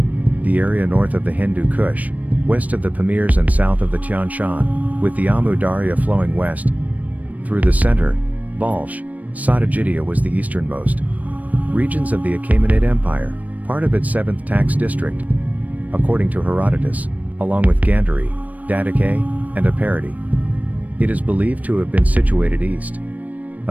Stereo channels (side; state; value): left; late; 0.073 ms